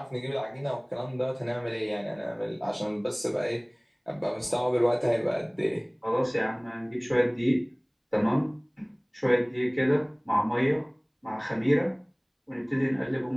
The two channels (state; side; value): identical; both; correlation 1.00